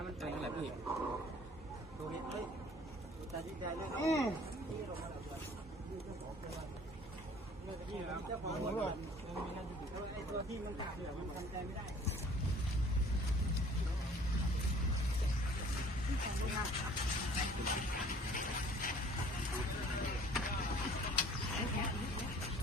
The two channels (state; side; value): normal; both; correlation 0.52